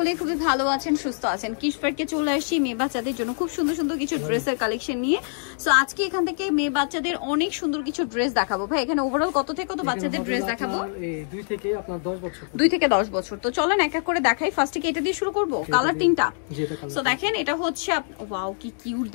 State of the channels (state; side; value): silent; right; digital silence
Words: খুবই ভালো আছেন, সুস্থ আছেন। কিডস পার্কে চলে আসছি মেয়ে বাচ্চাদের জন্য খুব সুন্দর সুন্দর কিছু ড্রেসের কালেকশন নিয়ে। সো আজকে এখান থেকে মেয়ে বাচ্চাদের অনেক সুন্দর কিছু ড্রেস দেখাবো। ভাই এখানে ওভারঅল কত থেকে কত বাচ্চাদের ড্রেস দেখাবো? 2 থেকে আপনার 10 বছর। 2 থেকে 10 বছর। তো চলেন এক এক করে দেখাই। ফার্স্টে কি এটা দিয়ে শুরু করব? কালার তিনটা। সো দেখেন এটা হচ্ছে, ওয়াও কি কিউট